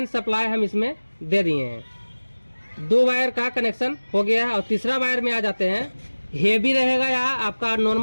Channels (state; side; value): inverted; both; correlation -1.00